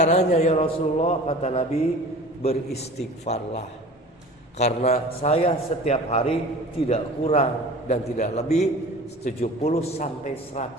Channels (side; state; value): both; normal; correlation 0.41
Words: ya Rasulullah? Kata Nabi, beristighfarlah. Karena saya setiap hari tidak kurang dan tidak lebih 70 sampai